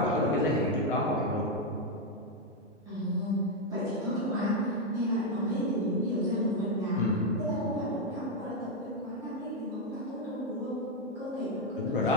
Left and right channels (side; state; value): both; normal; correlation 0.04